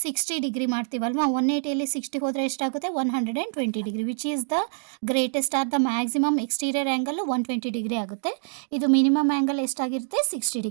60 ಡಿಗ್ರಿ ಮಾಡ್ತೀವಲ್ವಾ. 180ಯಲ್ಲಿ 60 ಹೋದರೆ ಎಷ್ಟಾಗುತ್ತೆ, 120 degree. Which is the greatest are the maximum exterior angle 120 degree ಆಗುತ್ತೆ. ಇದು ಮಿನಿಮಮ್ ಆ್ಯಂಗಲ್ ಎಷ್ಟಾಗಿರುತ್ತೆ, 60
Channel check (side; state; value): left; silent; digital silence